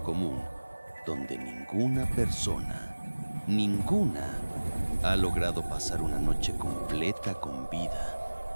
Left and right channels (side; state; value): both; inverted; correlation -1.00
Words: común, donde ninguna, ha logrado pasar una noche completa con vida.